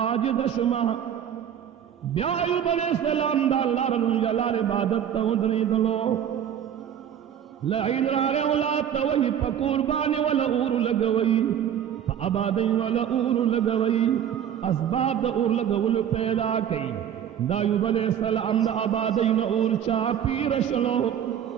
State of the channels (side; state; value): left; quieter; 9.4 dB